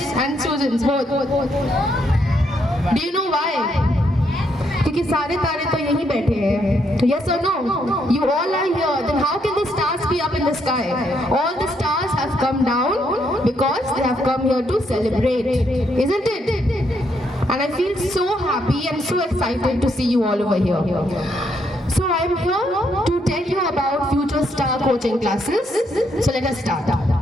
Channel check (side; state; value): both; normal; correlation 0.75